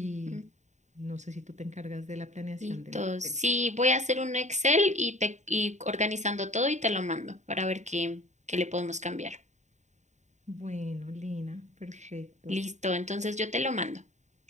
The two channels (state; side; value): late; left; 0.34 ms